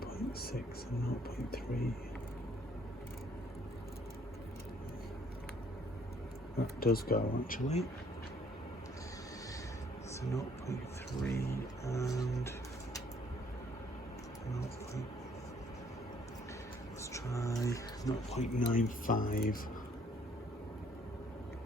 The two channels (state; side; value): normal; both; correlation 0.62